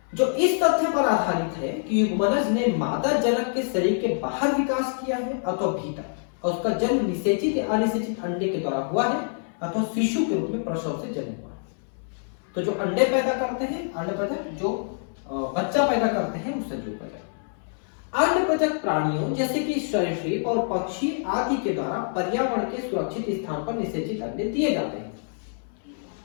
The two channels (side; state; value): right; silent; 61 dB below the other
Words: जो इस तथ्य पर आधारित है कि युग्मनज ने मादा जनक के शरीर के बाहर विकास किया है अथवा भीतर, और उसका जन्म निषेचित या अनिषेचित अंडे के द्वारा हुआ है अथवा शिशु के रूप में प्रसव से जन्म हुआ है। तो जो अंडे पैदा करते हैं अंडप्रजक, जो बच्चा पैदा करते हैं वो सजीव प्रजक। अंडप्रजक प्राणियों जैसे कि सरीसृप और पक्षी आदि के द्वारा पर्यावरण के सुरक्षित स्थान पर निषेचित अंडे दिए जाते हैं।